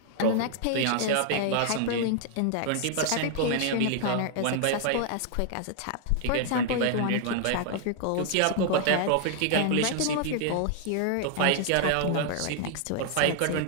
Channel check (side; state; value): both; different; correlation 0.00